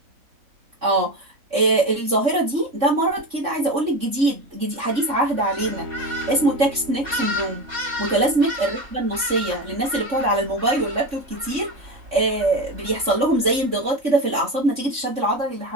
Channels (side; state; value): left; late; 3.6 ms